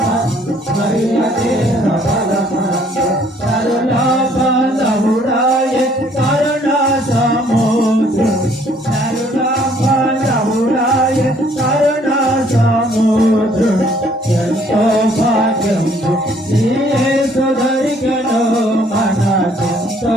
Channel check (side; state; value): both; normal; correlation 0.62